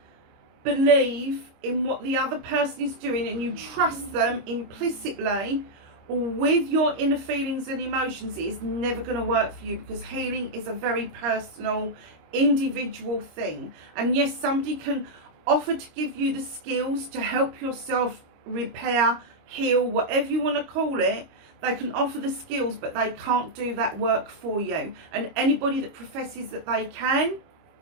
believe in what the other person is doing and you trust them implicitly with your inner feelings and emotions, it is never going to work for you, because healing is a very personal, individual thing. And yes, somebody can offer to give you the skills to help yourself repair, heal, whatever you want to call it. They can offer the skills, but they can't do that work for you. And anybody that professes that they can,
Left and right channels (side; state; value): left; late; 25 ms